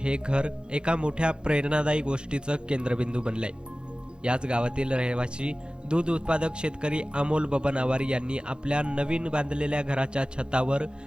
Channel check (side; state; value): left; late; 0.050 ms